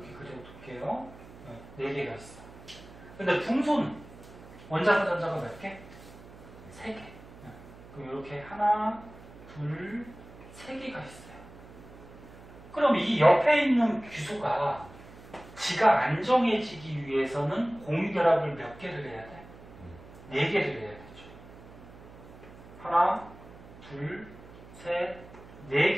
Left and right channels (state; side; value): noise; right; hum, 19 dB below the sound